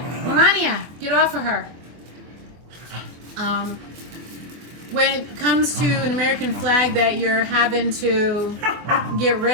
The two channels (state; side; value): late; left; 24 ms